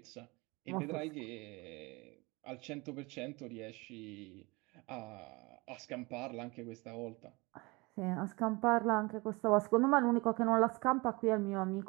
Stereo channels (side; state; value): left; quieter; 25.4 dB